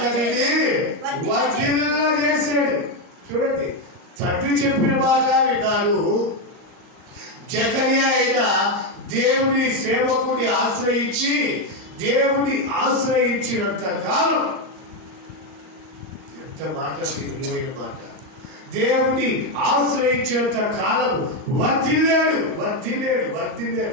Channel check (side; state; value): left; late; 38 ms